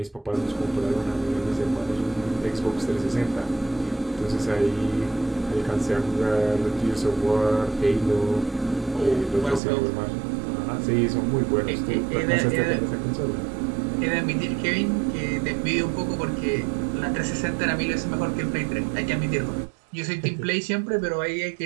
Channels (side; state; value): left; drops out; at 9.6 s